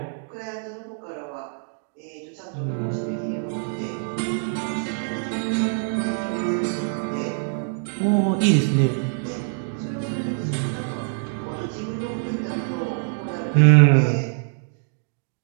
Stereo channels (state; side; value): silent; left; digital silence